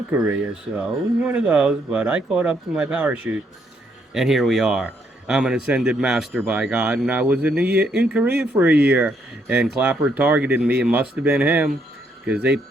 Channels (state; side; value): normal; both; correlation 0.73